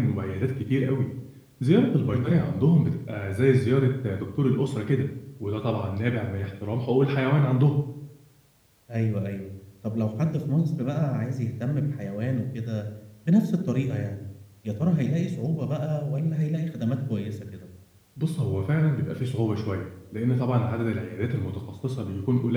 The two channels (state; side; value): identical; both; correlation 1.00